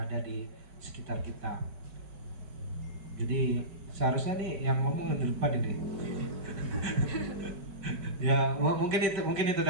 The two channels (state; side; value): late; left; 5.1 ms